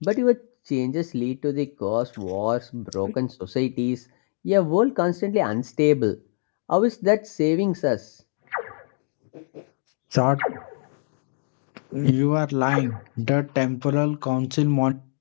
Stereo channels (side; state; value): right; silent; 62 dB below the other